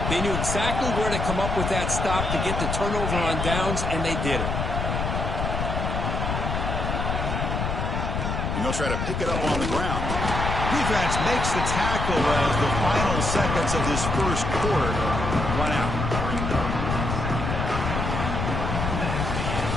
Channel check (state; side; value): noise; left; rumble, 2 dB below the sound